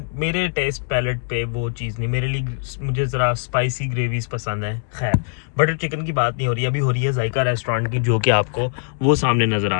मेरे टेस्ट पैलेट पे वो चीज़ नहीं, मेरे लिए मुझे ज़रा स्पाइसी ग्रेवीज़ पसंद है। खैर, बटर चिकन की बात नहीं हो रही, अभी हो रही है जायका रेस्टोरेंट की, जो कि आपको वो सामने नज़र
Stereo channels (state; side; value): silent; right; digital silence